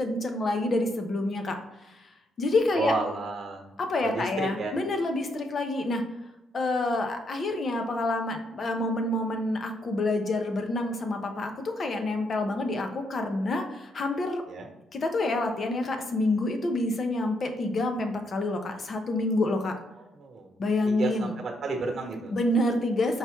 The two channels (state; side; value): normal; both; correlation 0.76